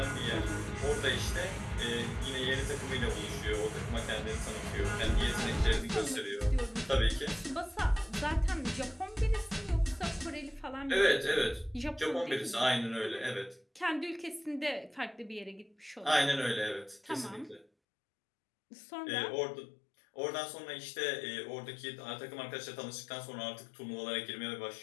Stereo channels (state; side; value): drops out; right; at 17.7 s